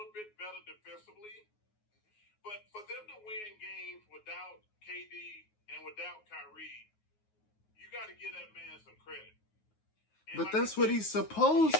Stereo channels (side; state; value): right; late; 9.4 ms